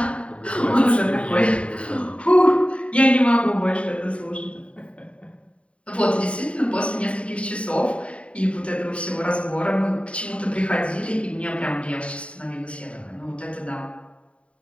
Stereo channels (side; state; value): right; late; 0.061 ms